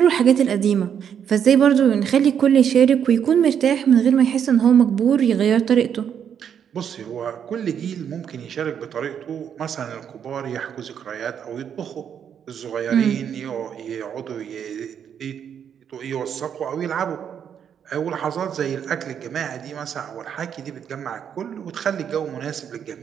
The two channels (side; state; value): left; quieter; 8.3 dB